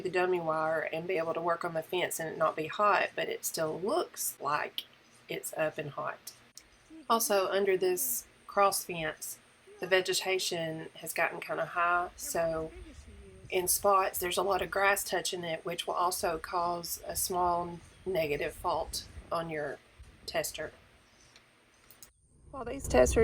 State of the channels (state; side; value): identical; both; correlation 1.00